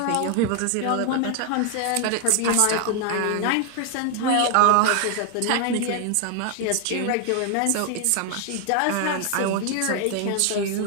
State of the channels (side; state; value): both; different; correlation 0.00